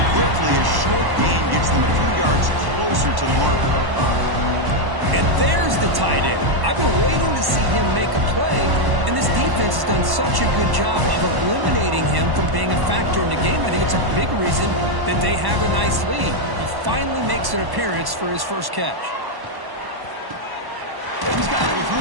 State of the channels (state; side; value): late; left; 1.1 ms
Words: quickly. A short gain gets them a few yards closer to the marker. And there's the tight end. I've been waiting to see him make a play, and this defense has done such a good job of eliminating him from being a factor in the game. I think it's a big reason that they have a nice lead. He finally makes an appearance for his first catch. He's got it with